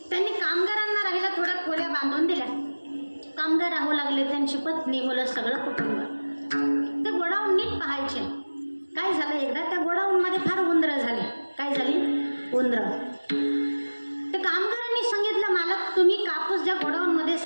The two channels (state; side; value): inverted; both; correlation -1.00